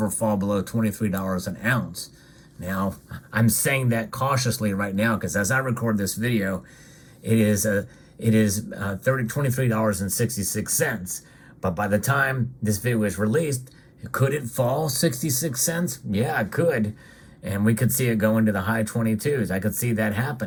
fall below $23 an ounce. Now, I'm saying that cautiously right now because as I record this video, it is $23.66. But by the time this video is released, could it fall 66 cents? Yeah, it could. And we could see it go into the high 22s. I could see that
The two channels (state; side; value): identical; both; correlation 1.00